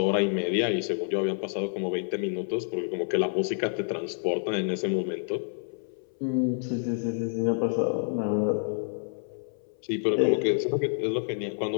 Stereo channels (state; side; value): silent; right; 59 dB below the other